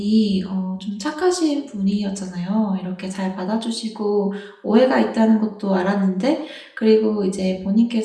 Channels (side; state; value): both; identical; correlation 1.00